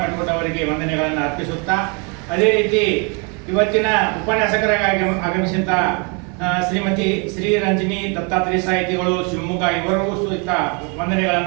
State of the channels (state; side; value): quieter; left; 33.9 dB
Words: ಮೆಟ್ಕೋಟ್ ಅವರಿಗೆ ವಂದನೆಗಳನ್ನು ಅರ್ಪಿಸುತ್ತಾ, ಅದೇ ರೀತಿ ಇವತ್ತಿನ ಉಪನ್ಯಾಸಕರಾಗಿ ಆಗಮಿಸಿದಂಥ ಶ್ರೀಮತಿ ಶ್ರೀ ರಂಜಿನಿ ದತ್ತಾತ್ರೇಯ ಸಾಹಿತಿಗಳು ಶಿವಮೊಗ್ಗ ಇವರಿಗೂ ಸಹಿತ